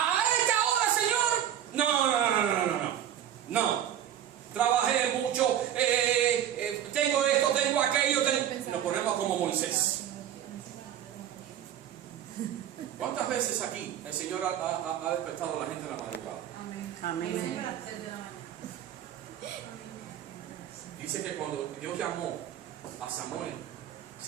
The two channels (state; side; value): quieter; left; 10.5 dB